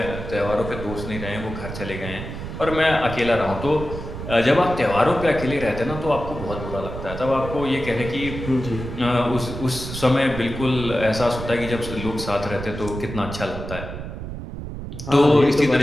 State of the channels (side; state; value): right; noise; rumble, 8 dB below the sound